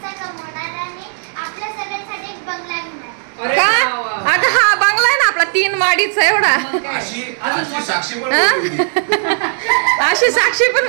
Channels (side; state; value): left; silent; digital silence